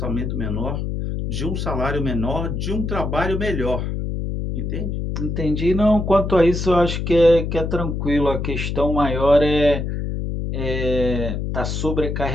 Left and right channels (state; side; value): noise; left; hum, 3 dB below the sound